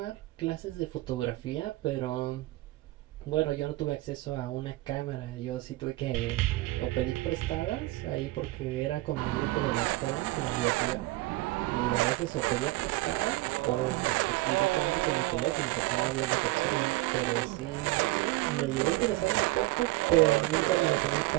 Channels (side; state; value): left; quieter; 19.3 dB